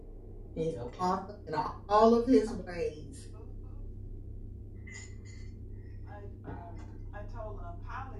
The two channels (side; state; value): both; identical; correlation 1.00